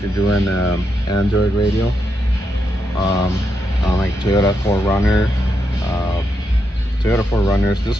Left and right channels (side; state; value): both; normal; correlation 0.83